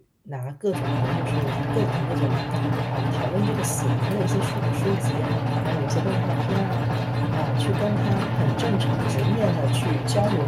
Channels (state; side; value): identical; both; correlation 1.00